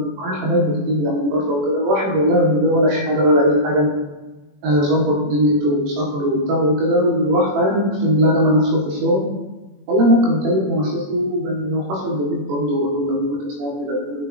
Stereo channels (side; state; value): left; late; 21 ms